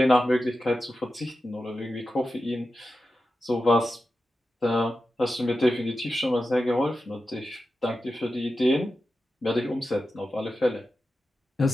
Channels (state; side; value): normal; both; correlation 0.92